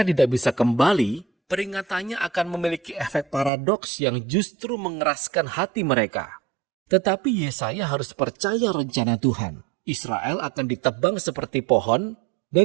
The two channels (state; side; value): drops out; left; at 3.5 s